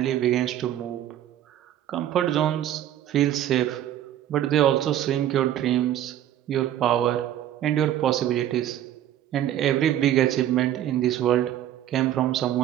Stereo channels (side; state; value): left; quieter; 11.8 dB